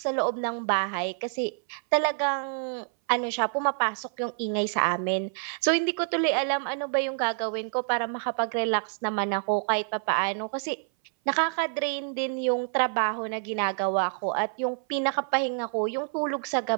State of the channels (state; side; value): silent; left; 58 dB below the other